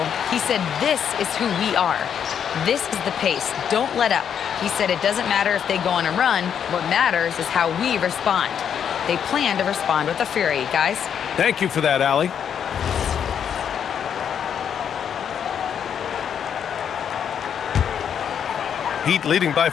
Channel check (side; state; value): right; quieter; 8.2 dB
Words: He said, this is who we are. This is the pace. Don't let up. He said it doesn't matter if they go on a run. What matters is how we respond. They plan to respond with a fury, guys. Thank you for that, Allie. Heat leading by